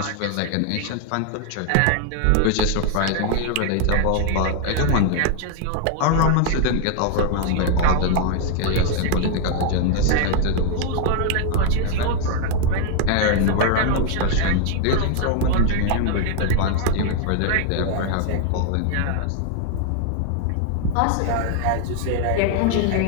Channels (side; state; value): both; different; correlation 0.00